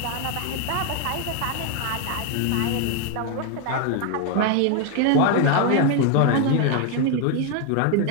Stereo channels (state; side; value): different; both; correlation 0.01